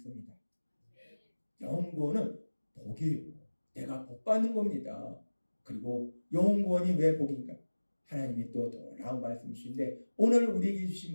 영혼권은 복이에요. 내가 복 받는 겁니다. 그리고 영혼권이 왜 복인가? 하나님이 또 놀라운 말씀이신데 오늘 우리에게 주신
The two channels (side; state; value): both; inverted; correlation -1.00